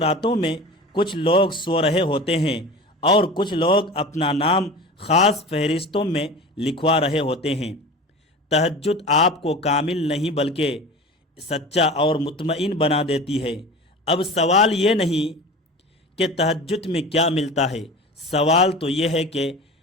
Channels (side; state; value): both; normal; correlation 0.34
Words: میں کچھ لوگ سو رہے ہوتے ہیں اور کچھ لوگ اپنا نام خاص فہرستوں میں لکھوا رہے ہوتے ہیں۔ تہجد آپ کو کامل نہیں بلکہ سچا اور مطمئن بنا دیتی ہے۔ اب سوال یہ نہیں کہ تہجد میں کیا ملتا ہے، سوال تو یہ ہے کہ